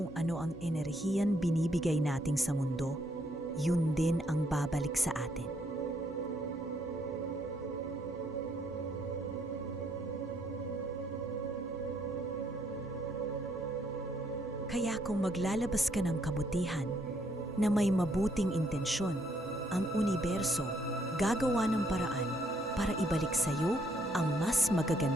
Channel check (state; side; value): normal; both; correlation 0.70